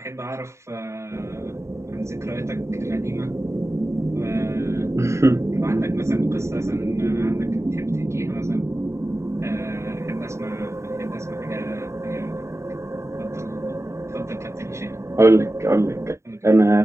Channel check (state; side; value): late; left; 0.14 ms